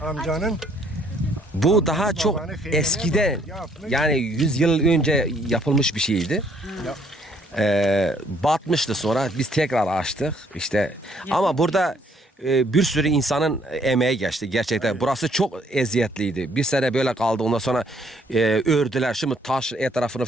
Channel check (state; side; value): normal; both; correlation 0.65